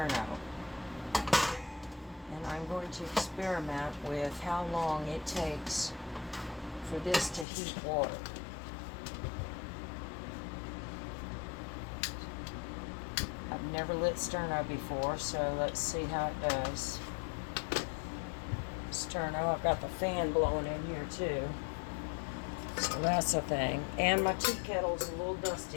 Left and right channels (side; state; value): right; drops out; at 7.5 s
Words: and I'm going to experiment with how long it takes for this to heat water. I've never lit sterno before, so let's see how it does. Sterno, I've got the fan blowing in here too, so that's a thing. And my tea kettle's a little